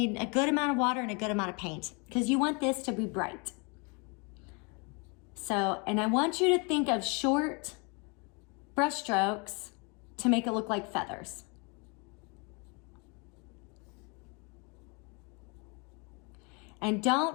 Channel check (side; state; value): right; quieter; 32.0 dB